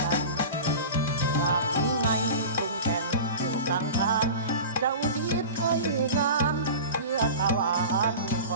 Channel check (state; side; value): inverted; both; correlation -0.33